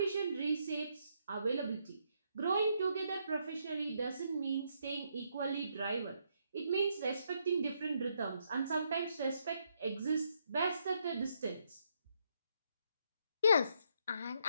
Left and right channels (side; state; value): both; inverted; correlation -0.76